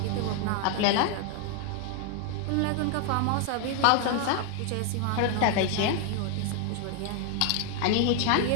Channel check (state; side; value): different; both; correlation 0.00